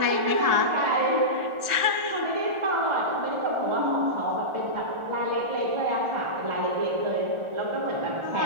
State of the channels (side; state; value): left; late; 1.4 ms